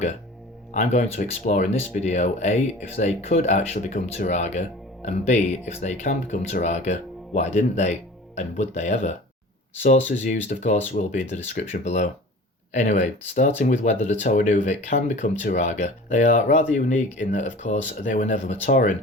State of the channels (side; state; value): both; normal; correlation 0.41